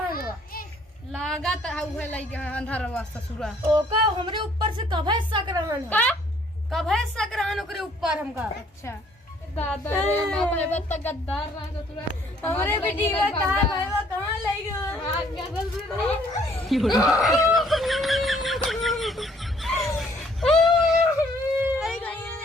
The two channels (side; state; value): both; normal; correlation 0.62